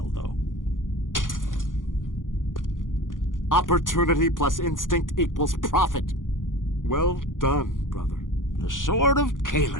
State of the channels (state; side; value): late; right; 0.89 ms